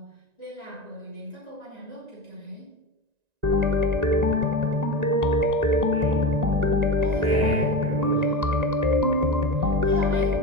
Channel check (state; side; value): late; left; 1.9 ms